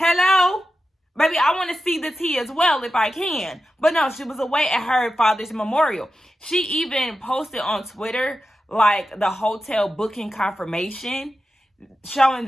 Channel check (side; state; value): both; normal; correlation 0.91